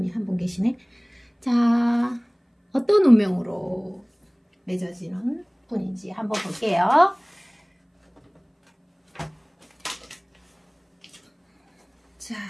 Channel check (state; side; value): identical; both; correlation 1.00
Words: 한 분 계시네. 자, 어떤 운명으로 맺어지는 분인지 한번 볼게요. 자,